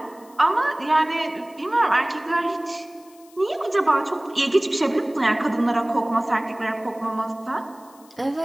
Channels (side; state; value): left; noise; hiss, 27 dB below the sound